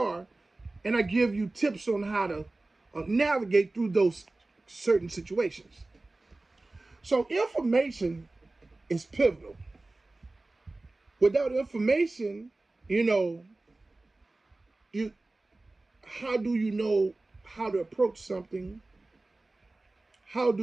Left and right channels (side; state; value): left; quieter; 3.0 dB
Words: and I give you tips on how to navigate through those certain situations. So information is pivotal. Without information, how do you know how to approach something? How